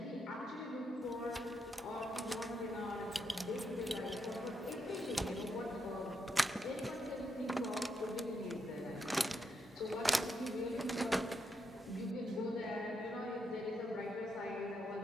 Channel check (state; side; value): normal; both; correlation 0.81